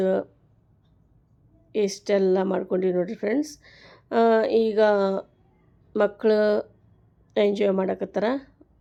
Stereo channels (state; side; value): identical; both; correlation 1.00